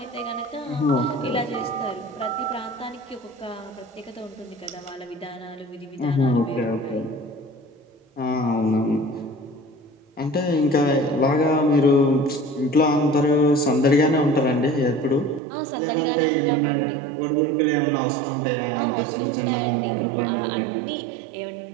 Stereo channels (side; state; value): left; drops out; at 15.4 s